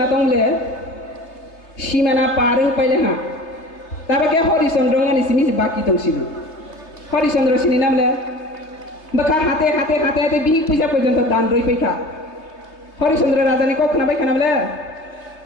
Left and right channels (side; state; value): right; late; 3.3 ms